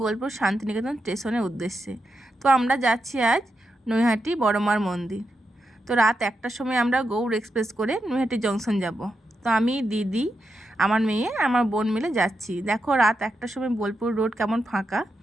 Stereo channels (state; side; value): normal; both; correlation 0.86